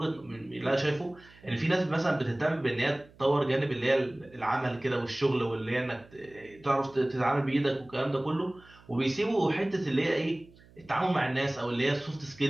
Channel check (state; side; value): noise; right; hum, 26 dB below the sound